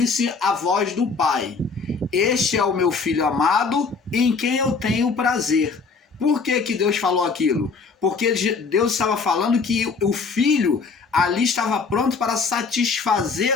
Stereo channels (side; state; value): right; quieter; 4.8 dB